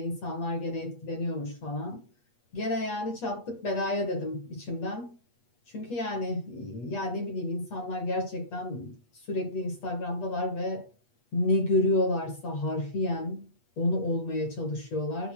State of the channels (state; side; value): late; right; 8.4 ms